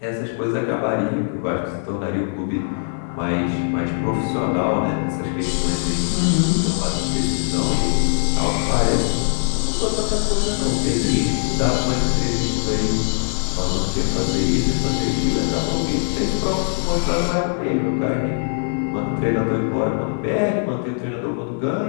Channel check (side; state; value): right; silent; digital silence